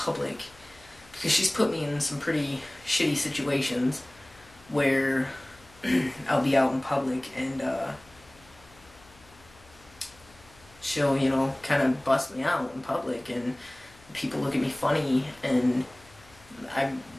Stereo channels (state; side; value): noise; left; hum, 26 dB below the sound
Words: because she's put me in some pretty shitty situations where I'll be out in public and she'll, kind of bust me out in public, and people look at me funny, and